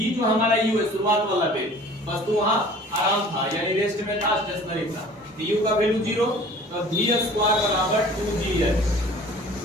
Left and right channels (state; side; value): normal; both; correlation 0.47